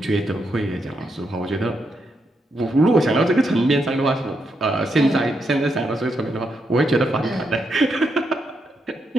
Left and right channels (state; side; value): normal; both; correlation 0.81